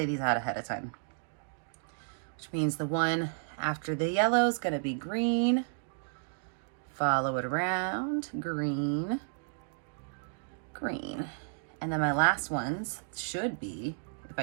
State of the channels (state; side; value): silent; left; digital silence